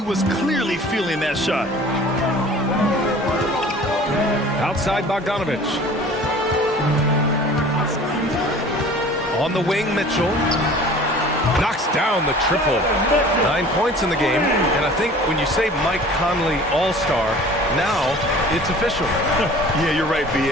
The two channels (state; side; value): normal; both; correlation 0.45